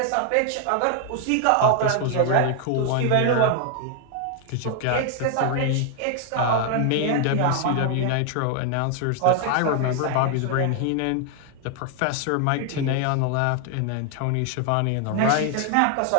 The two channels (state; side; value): different; both; correlation 0.00